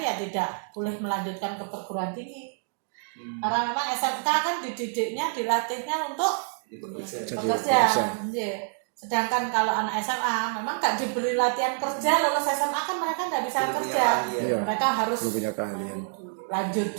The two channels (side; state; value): left; silent; digital silence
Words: ya tidak boleh melanjutkan ke perguruan tinggi. Karena memang SMK kan dididiknya, dilatihnya untuk bekerja. Sedangkan kalau anak SMA memang nggak diberi latihan kerja, lulus SMA kan mereka nggak bisa kerja. Mereka harus punya keahlian. Lanjut